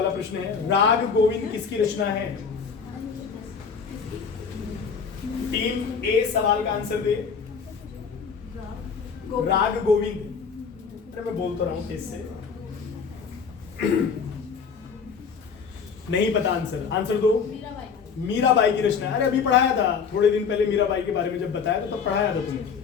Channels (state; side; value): quieter; right; 6.0 dB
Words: प्रश्न है। राग गोविंद किसकी रचना है? टीम ए सवाल का आंसर दे। राग गोविंद, अरे मैं बोल तो रहा हूं तेज से। नहीं पता आंसर, आंसर दो। मीराबाई की रचना। अरे अभी पढ़ाया था थोड़े दिन पहले, मीराबाई के बारे में जब बताया तो तब पढ़ाया था तुमने।